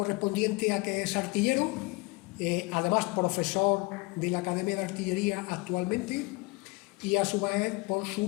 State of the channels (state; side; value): quieter; right; 25.6 dB